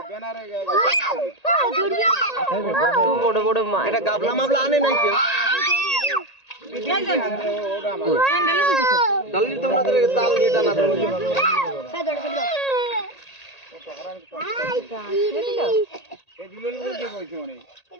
বড় বড় মাছ, এটা গাবলা মাবলা আনে নাই কেউ। ডালনি তো আমাদের তাল দিয়ে টানা ধরে।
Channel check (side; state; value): right; late; 1.8 ms